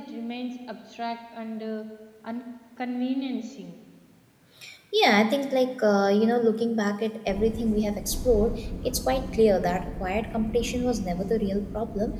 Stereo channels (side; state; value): both; identical; correlation 1.00